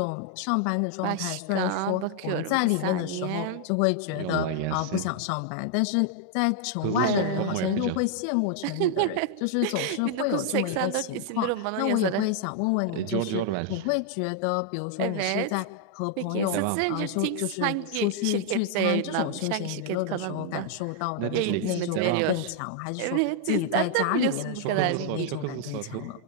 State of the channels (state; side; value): different; both; correlation 0.00